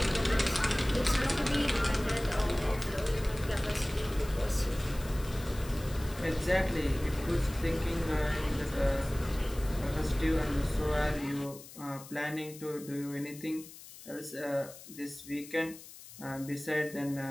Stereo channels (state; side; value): noise; left; hiss, 17 dB below the sound